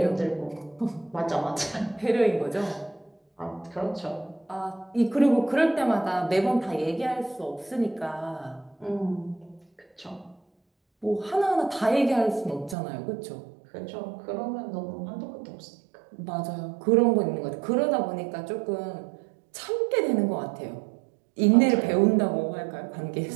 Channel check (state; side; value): drops out; left; at 12.8 s